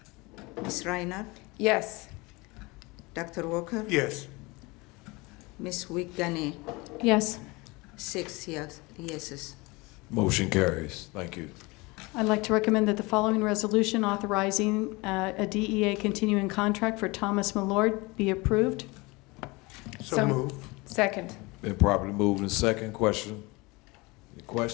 Ms. Reinhardt, Yes. Dr. Walker, Yes. Ms. Wiegany. Yes. 6 yeses. Motion carries. Thank you. I'd like to recommend that the following resolution authorizing a DEA continuing contract for Thomas Millard be approved. So moved. Second. Been properly moved and second. Question? Any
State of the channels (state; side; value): quieter; right; 24.5 dB